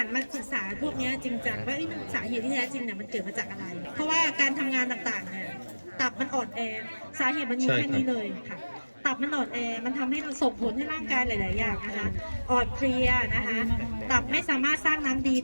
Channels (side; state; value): both; inverted; correlation -1.00